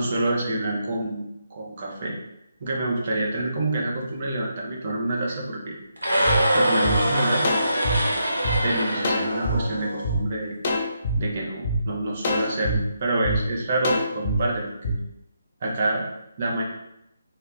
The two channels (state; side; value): inverted; both; correlation -0.79